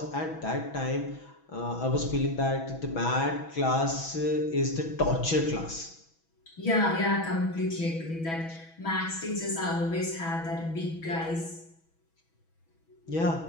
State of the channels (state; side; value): late; right; 6.1 ms